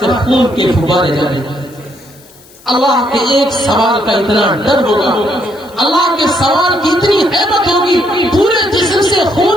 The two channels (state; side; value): noise; left; hiss, 25 dB below the sound